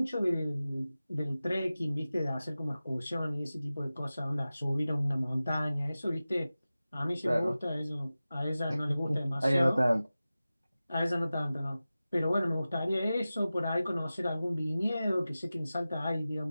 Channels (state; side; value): inverted; both; correlation -0.96